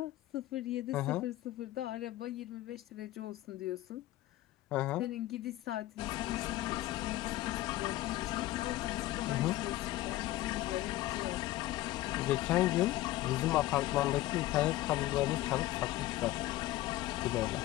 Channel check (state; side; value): quieter; right; 16.2 dB